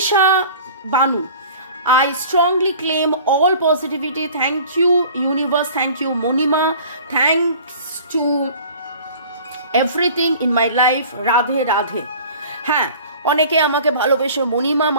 Banu, I strongly claim all positivity. Thank you, universe. Thank you, Monima. Thanks to everything in my life. Radhe Radhe. হ্যাঁ, অনেকে আমাকে ভালোবেসে মণিমা,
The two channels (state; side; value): inverted; both; correlation -0.45